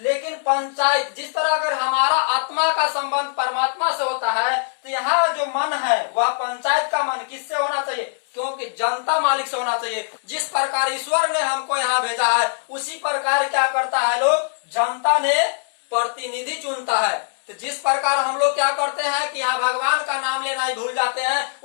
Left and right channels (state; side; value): silent; right; 64 dB below the other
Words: पंचायत, जिस तरह अगर हमारा आत्मा का संबंध परमात्मा से होता है, तो यहाँ जो मन है वह पंचायत का मन किससे होना चाहिए, क्योंकि जनता मालिक से होना चाहिए। जिस प्रकार ईश्वर ने हमको यहाँ भेजा है, उसी प्रकार क्या करता है लोग, जनता ने प्रतिनिधि चुनता है। तो जिस प्रकार हम लोग क्या करते हैं कि यहाँ भगवान का नाम लेना ही भूल जाते हैं,